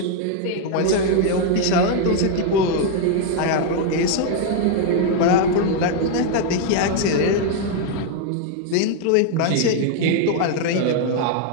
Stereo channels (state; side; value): different; both; correlation 0.00